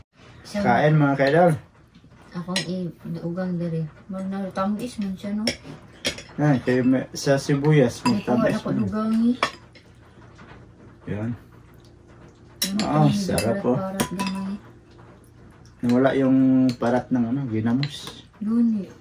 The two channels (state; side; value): identical; both; correlation 1.00